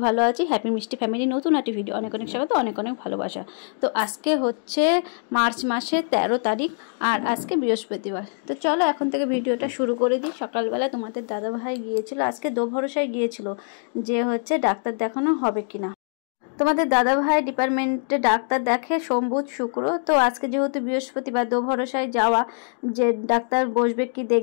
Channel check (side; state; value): right; silent; 63 dB below the other